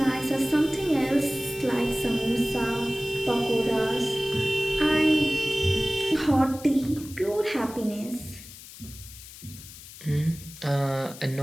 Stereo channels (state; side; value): noise; left; hiss, 16 dB below the sound